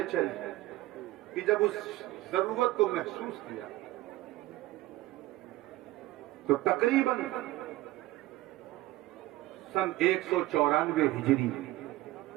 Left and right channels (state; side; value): quieter; left; 17.3 dB